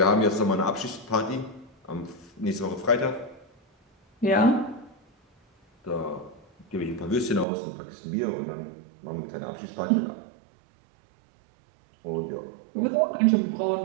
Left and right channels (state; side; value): drops out; left; at 7.5 s